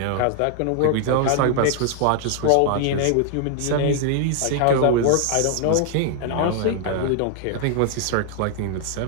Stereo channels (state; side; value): different; both; correlation 0.00